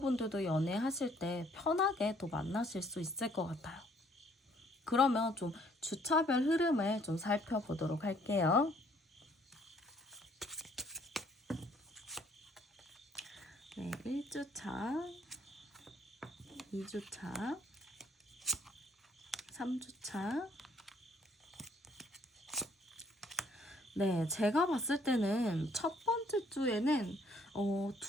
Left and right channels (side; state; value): both; normal; correlation 0.64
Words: 연애하실 때 편하게 또 만나실 수 있을 것 같아요. 그러면 좀 주차별 흐름을 좀 살펴보도록 할게요. 네, 1주차, 2주차, 3주차. 네, 제가 봤을 때는 첫 번째 주에는